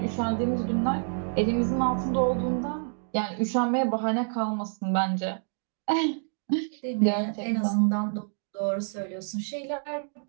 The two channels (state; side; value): silent; left; 59 dB below the other